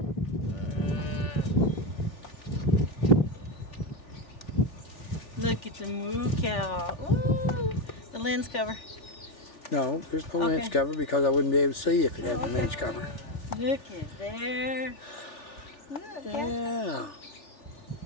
Look at the moo cow. Ooh, the lens cover. No, there's no lens cover because I wouldn't be able to see if it had a lens cover. Look at there. Look, Yeah.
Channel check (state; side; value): late; right; 3.4 ms